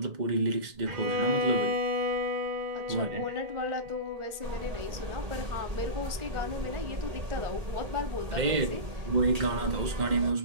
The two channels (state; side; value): late; left; 1.5 ms